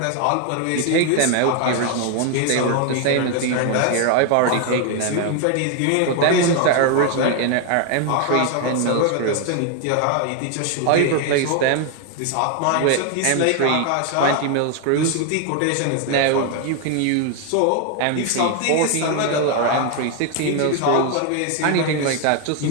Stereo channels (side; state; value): both; different; correlation 0.01